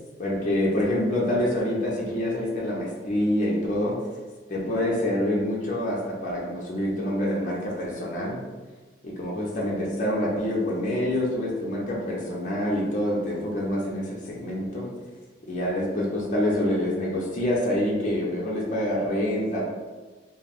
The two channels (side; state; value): both; normal; correlation 0.53